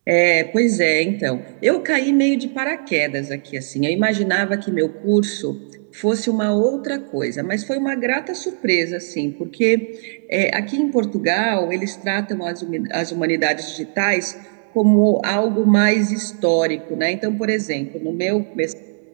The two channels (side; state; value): left; silent; digital silence